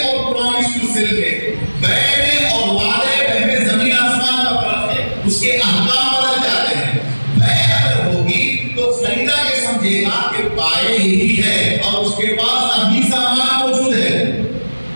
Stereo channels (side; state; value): both; inverted; correlation -1.00